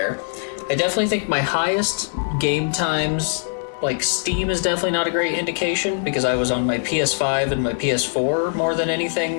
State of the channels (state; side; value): silent; right; digital silence